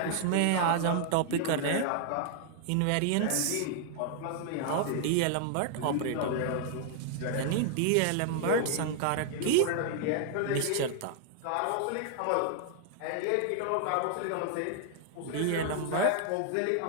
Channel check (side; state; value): both; different; correlation 0.00